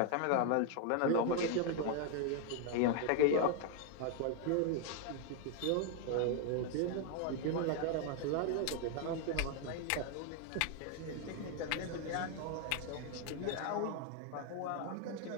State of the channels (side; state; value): both; different; correlation 0.00